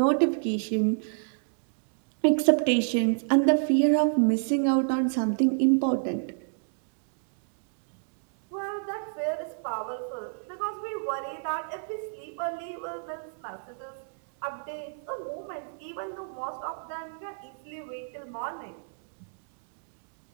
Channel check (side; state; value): left; silent; digital silence